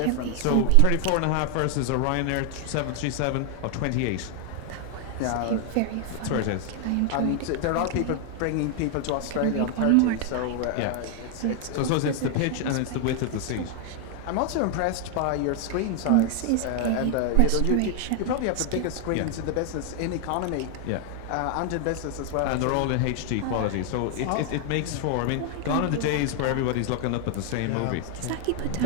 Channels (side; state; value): both; different; correlation 0.00